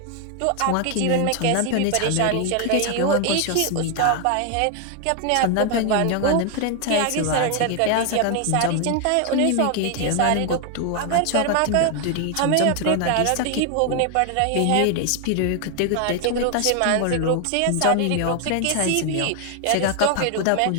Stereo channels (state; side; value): different; both; correlation 0.00